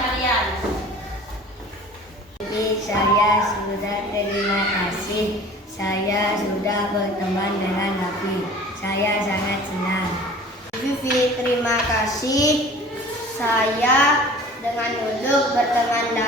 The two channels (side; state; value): both; normal; correlation 0.44